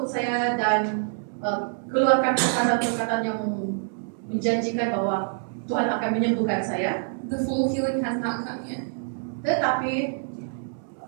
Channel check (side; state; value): left; silent; digital silence